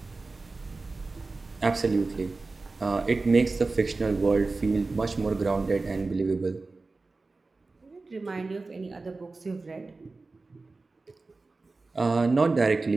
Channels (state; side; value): quieter; left; 3.6 dB